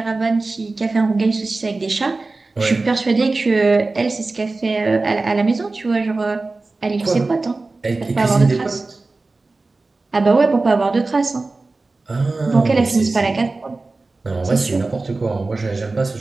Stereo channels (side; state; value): left; quieter; 3.5 dB